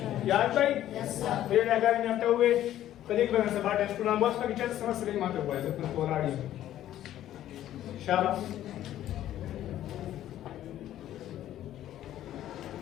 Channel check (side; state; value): right; quieter; 12.5 dB